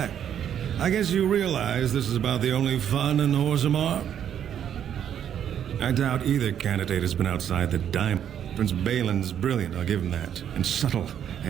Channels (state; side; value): quieter; left; 9.4 dB